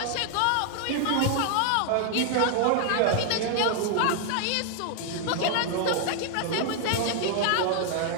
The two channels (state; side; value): different; both; correlation 0.00